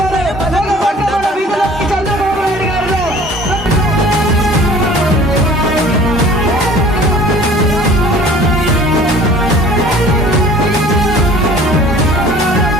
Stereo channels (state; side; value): normal; both; correlation 0.48